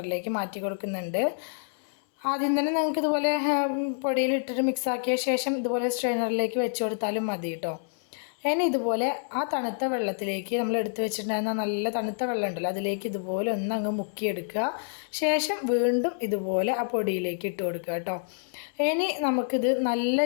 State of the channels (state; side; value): silent; right; digital silence